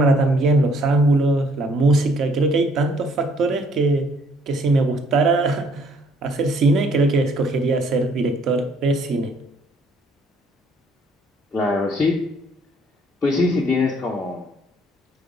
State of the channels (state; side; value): normal; both; correlation 0.63